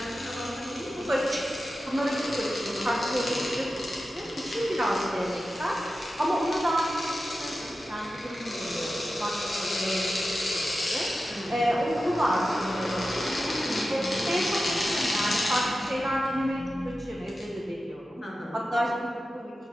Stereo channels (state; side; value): normal; both; correlation 0.93